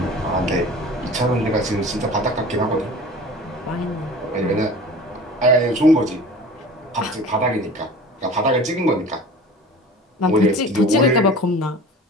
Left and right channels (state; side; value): normal; both; correlation 0.40